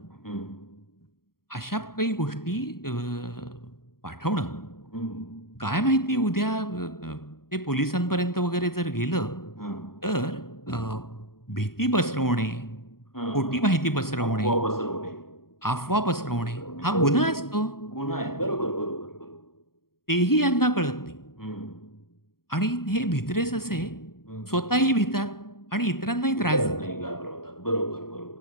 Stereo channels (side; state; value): right; late; 0.93 ms